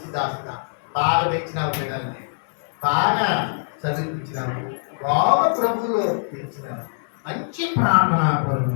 దాసుగా బాగా పెంచినావు, పిల్లల్ని బాగా చదివించినావు, బాగా ప్రభువులో పెంచినావు, మంచి ప్రార్థనా పరులు,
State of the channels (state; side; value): silent; right; digital silence